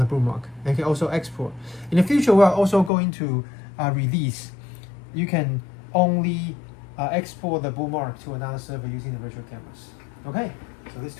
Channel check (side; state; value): right; drops out; at 2.9 s